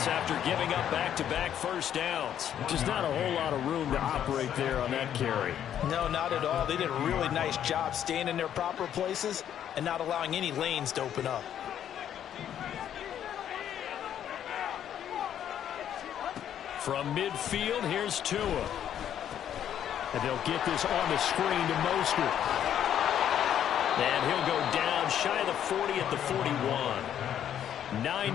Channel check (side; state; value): right; quieter; 10.0 dB